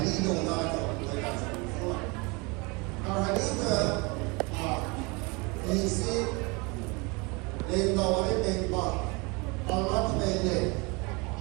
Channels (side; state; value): left; quieter; 28.0 dB